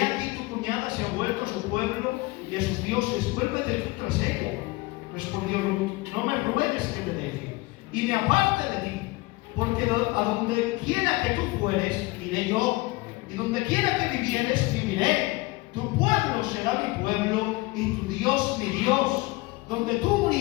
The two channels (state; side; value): quieter; right; 22.4 dB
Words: tu cuñada se ha vuelto a su pueblo y a sus dioses, vuélvete tú tras ella. Respondió Ruth: no me ruegues que te deje y me aparte de ti, porque a donde quiera que tú fueres, iré yo, y donde quiera que vivieres, viviré. Tu pueblo será mi pueblo y tu Dios mi Dios. Donde tú